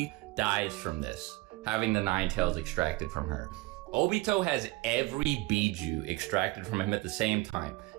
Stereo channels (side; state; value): left; quieter; 21.3 dB